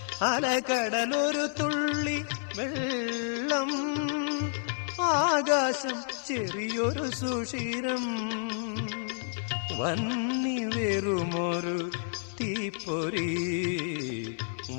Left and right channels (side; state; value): right; silent; 58 dB below the other